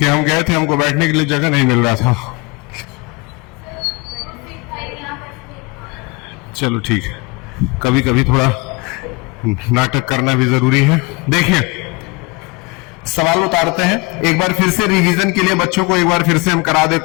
हम गए थे, हमको बैठने के लिए जगह नहीं मिल रहा था। चलो ठीक है, कभी कभी थोड़ा नाटक करना भी जरूरी है। देखिए सवाल उतारते हैं, एक बार फिर से रिवीजन के लिए बच्चों को एक बार फिर से हम करा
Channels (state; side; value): quieter; right; 26.6 dB